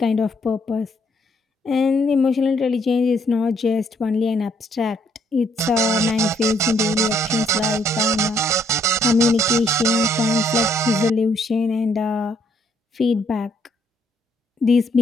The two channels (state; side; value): normal; both; correlation 0.70